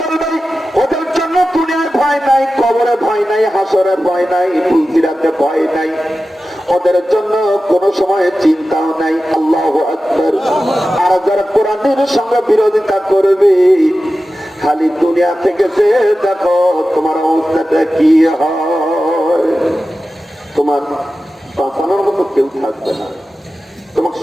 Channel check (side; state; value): both; normal; correlation 0.94